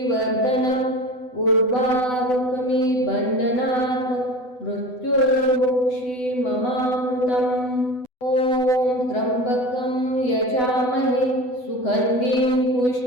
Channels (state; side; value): late; right; 8.0 ms